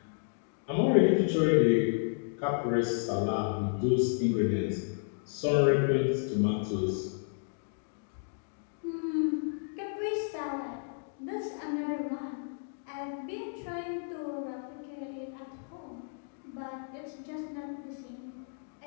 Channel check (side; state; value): right; silent; digital silence